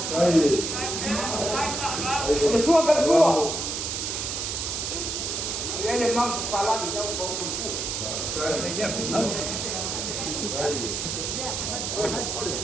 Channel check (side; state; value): right; noise; hiss, 2 dB below the sound